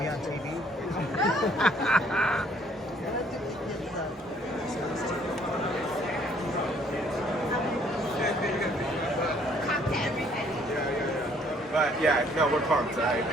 on TV. But yeah, no, we're pumped. I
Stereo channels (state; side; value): normal; both; correlation 0.62